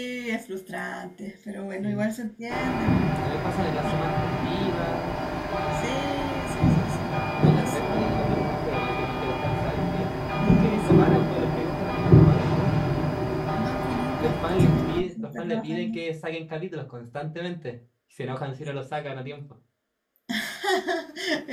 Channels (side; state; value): both; identical; correlation 1.00